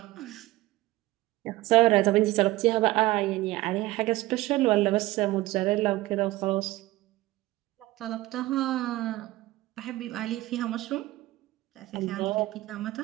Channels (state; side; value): quieter; left; 18.1 dB